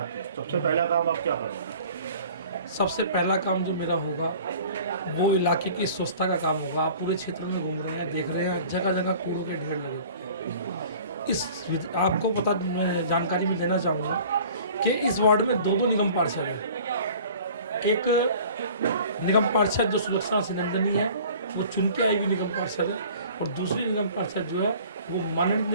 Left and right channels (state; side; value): inverted; both; correlation -0.47